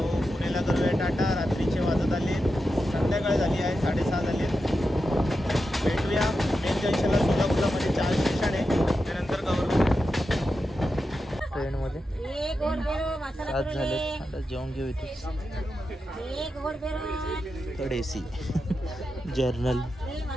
पुणेला करूया टाटा. रात्रीचे वाजत आले, संध्याकाळ झाली आहे, 6:30 झाले. भेटूया मेन जंक्शनला. सोलापूरला मध्ये 4 स्टेशन आहे, त्यानंतर कवर करू ट्रेनमध्ये. आज झाले, आता जेवण घेऊ इथे. Third AC journal.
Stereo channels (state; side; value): normal; both; correlation 0.89